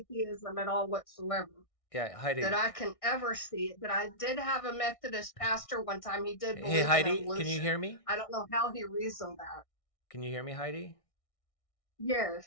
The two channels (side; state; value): right; late; 1.6 ms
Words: at all whatsoever Yeah, Heidi. that I can ever see. But I did have a Methodist pastor one time. He did believe Hey, Heidi, in evolution. can you hear me? I don't know how he reasoned that. Can you hear me, Heidi?